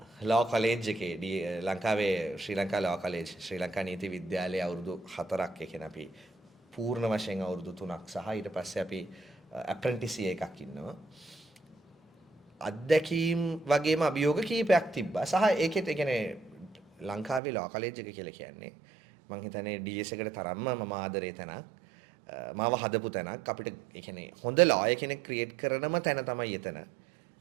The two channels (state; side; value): drops out; left; at 17.4 s